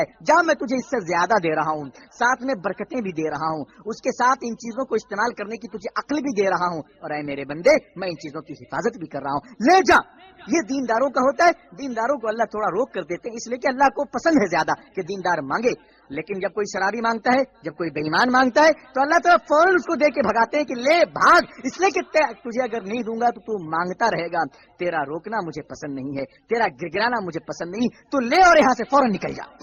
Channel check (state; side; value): identical; both; correlation 1.00